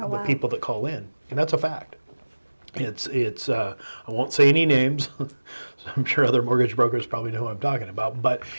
people that call in, and that's a fact. It's I won't say any names. I'm sure other mortgage brokers probably know who I'm talking about, but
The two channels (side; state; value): both; inverted; correlation -1.00